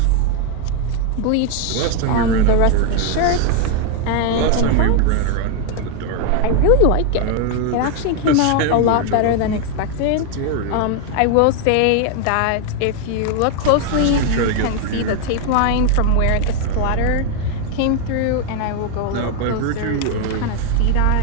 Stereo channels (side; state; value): both; different; correlation 0.00